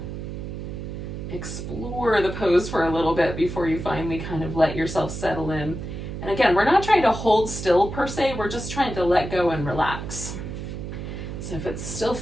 explore the pose for a little bit before you finally kind of let yourself settle in. And again, we're not trying to hold still per se, we're just trying to let go and relax. So if it still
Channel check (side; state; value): right; noise; hum, 7 dB below the sound